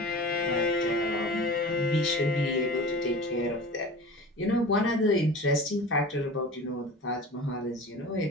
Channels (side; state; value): both; normal; correlation 0.36